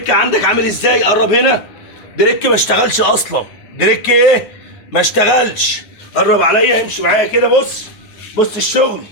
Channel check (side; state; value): right; late; 9.4 ms